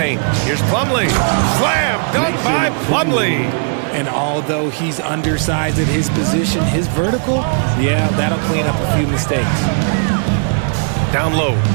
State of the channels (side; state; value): left; silent; 65 dB below the other